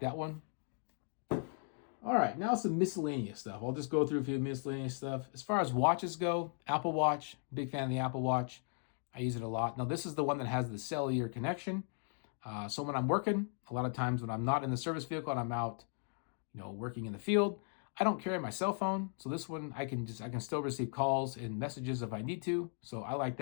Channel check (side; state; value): right; silent; 53 dB below the other